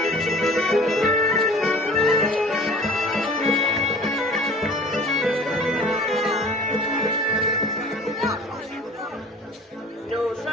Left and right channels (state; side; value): normal; both; correlation 0.45